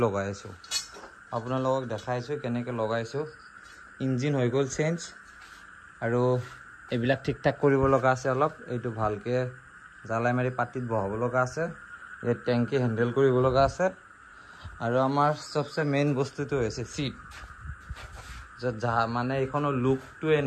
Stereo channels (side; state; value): both; identical; correlation 1.00